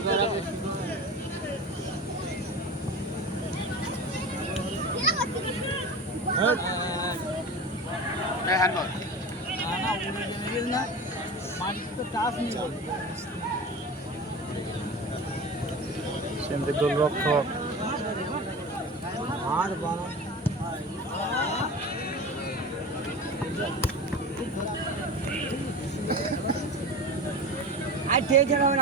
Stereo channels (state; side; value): normal; both; correlation 0.31